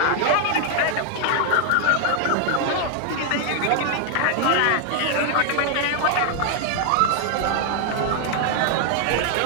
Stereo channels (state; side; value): different; both; correlation 0.00